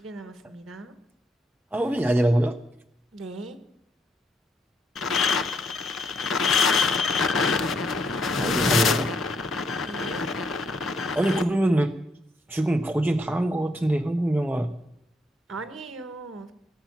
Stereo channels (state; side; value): normal; both; correlation 0.75